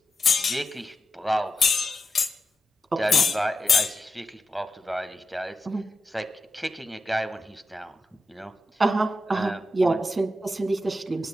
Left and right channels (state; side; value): normal; both; correlation 0.89